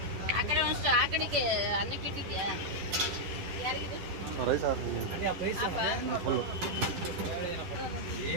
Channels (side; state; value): left; late; 11 ms